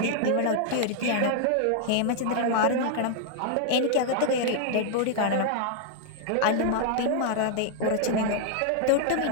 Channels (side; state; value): both; different; correlation 0.00